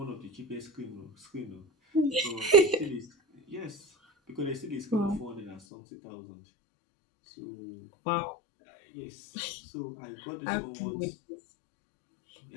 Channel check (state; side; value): drops out; right; at 5.6 s